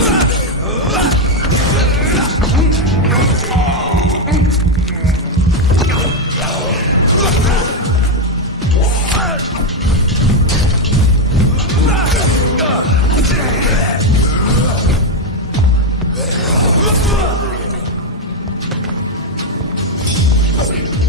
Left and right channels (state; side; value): normal; both; correlation 0.05